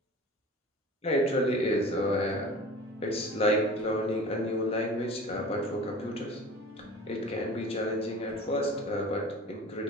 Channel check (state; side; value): normal; both; correlation 0.40